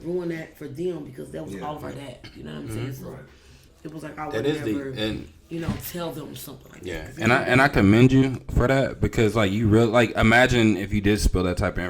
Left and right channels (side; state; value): both; identical; correlation 1.00